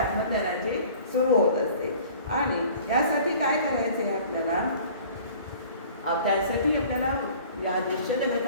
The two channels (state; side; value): inverted; both; correlation -0.48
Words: सुरू होत असते. आणि यासाठी काय करायचं आहे आपल्याला? त्यासाठी आपल्याला या दृश्य